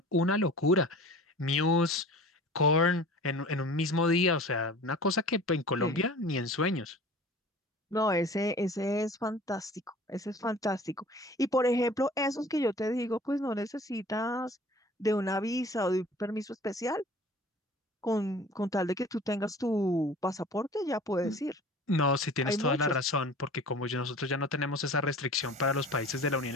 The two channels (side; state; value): both; normal; correlation 0.44